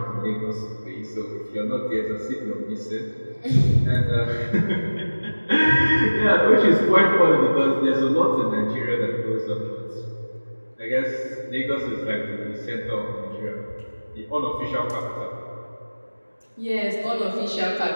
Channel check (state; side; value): inverted; both; correlation -1.00